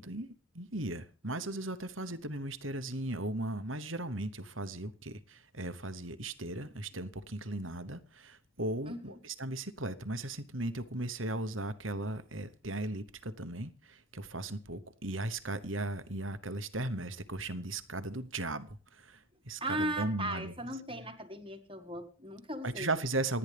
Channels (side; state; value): both; normal; correlation 0.35